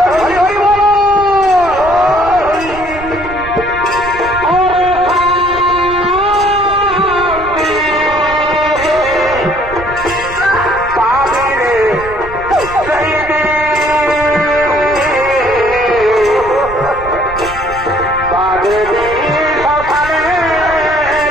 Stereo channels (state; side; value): noise; right; rumble, 14 dB below the sound